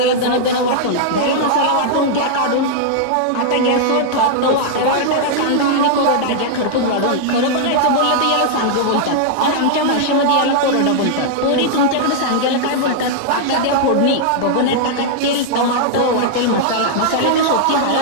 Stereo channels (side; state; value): both; different; correlation -0.01